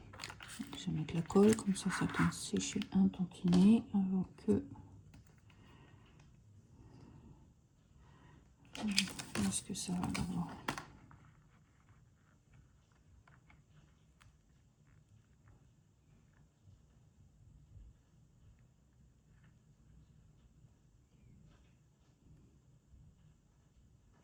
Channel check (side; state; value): both; identical; correlation 1.00